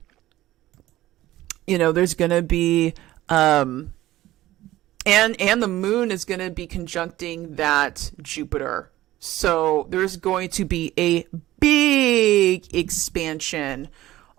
there's going to be, and the moon is going to be conjuncting that Jupiter. So there's going to be a big expansion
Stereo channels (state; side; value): quieter; left; 15.6 dB